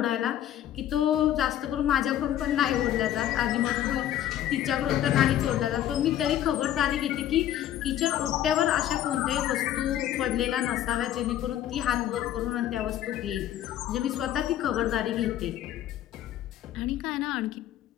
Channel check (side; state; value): right; quieter; 11.8 dB